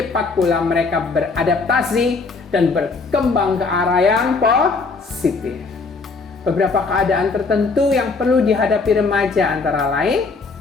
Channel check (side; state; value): right; quieter; 4.2 dB